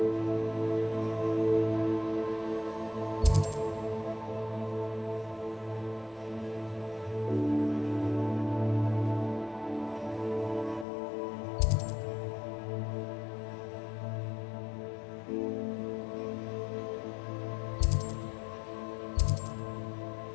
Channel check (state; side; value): drops out; right; at 10.9 s